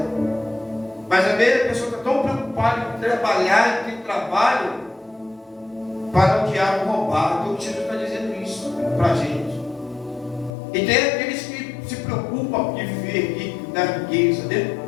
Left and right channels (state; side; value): drops out; right; at 10.5 s